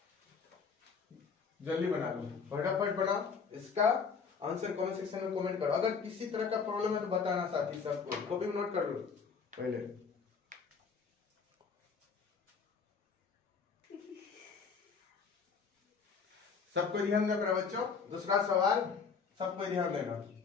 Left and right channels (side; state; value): right; quieter; 5.6 dB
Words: जल्दी बना लो, फटाफट बनाओ। इसका आंसर कमेंट सेक्शन में कमेंट करो। अगर किसी तरह का प्रॉब्लम है तो बताना साथी सबको। कॉपी में नोट कर लो पहले। सबको ध्यान देना बच्चों। दूसरा सवाल सबको ध्यान देना।